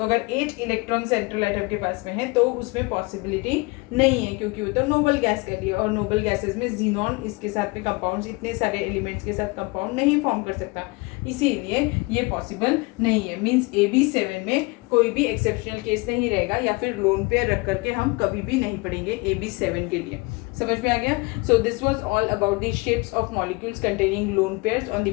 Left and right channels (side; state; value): right; quieter; 25.8 dB